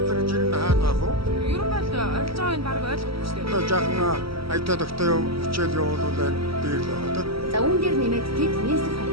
гэж энэ хаана байх вэ? Ер нь бол орилж байгааг нь баг ойлгохгүй шүү дээ. Одоо жаахан аятаа дохтой хичээл явуулвал дээр л байгаа тийм. За үүн дээр нэмээд тэд нийслэл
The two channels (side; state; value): left; late; 0.75 ms